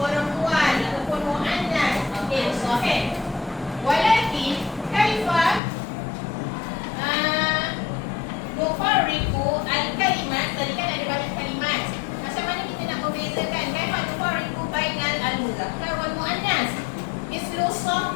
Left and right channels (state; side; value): drops out; right; at 5.6 s